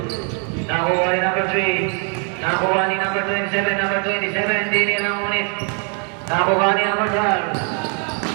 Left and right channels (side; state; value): left; quieter; 39.3 dB